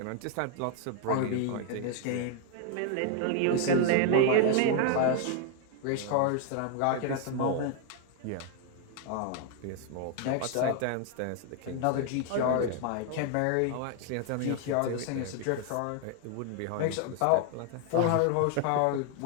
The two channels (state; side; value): different; both; correlation 0.00